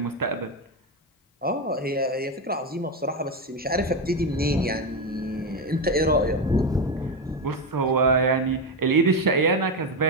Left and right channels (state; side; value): normal; both; correlation 0.12